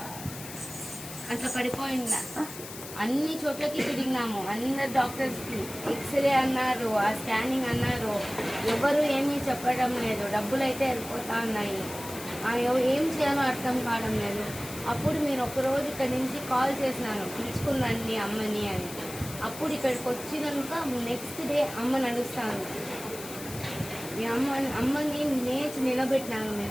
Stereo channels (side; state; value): left; noise; hiss, 12 dB below the sound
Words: అట్లా పడిపోయిందా. అన్ని చోట్లకి తిరిగినాము, అందరు డాక్టర్స్కి ఎక్స్రే అన్నారు, ఆ స్కానింగ్ అన్నారు, ఎవరు ఏమీ చెప్పడం లేదు. డబ్బులు అయితే వెళ్ళిపోతా ఉన్నాయి, ఏం చేయాలో అర్థం కావడం లేదు. అప్పుడు మీరు ఒకరోజు ఇక్కడి నుంచి కాల్ చేసినాను పిలుచుకున్నాండి అమ్మని అని. అప్పుడు ఇక్కడికి వచ్చినాక నెక్స్ట్ డే అమ్మ నడుస్తాను. మీ అమ్మని నేర్చి నిలబెట్టినాను